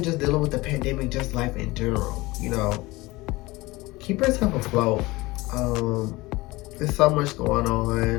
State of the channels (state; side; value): quieter; right; 21.2 dB